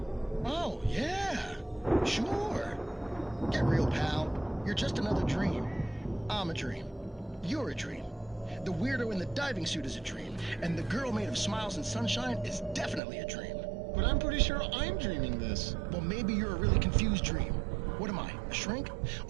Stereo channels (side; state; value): left; drops out; at 13.0 s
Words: Oh, yeah. Sure. Get real, pal. You're just another dream. I'm a dream. You're a dream. The weirdo in the diving suit is a dream. And the girl made of smiles and sunshine is definitely a dream. But I'm pretty sure I'm dreaming this. Well, maybe you're a really confused dream. What am I, A shrink?